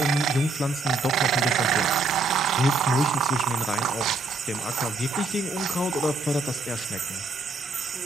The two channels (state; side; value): quieter; left; 3.5 dB